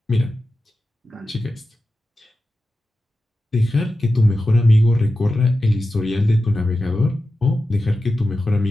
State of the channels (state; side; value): normal; both; correlation 0.92